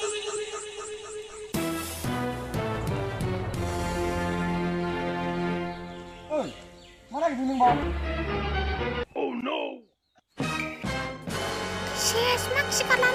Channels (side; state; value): both; identical; correlation 1.00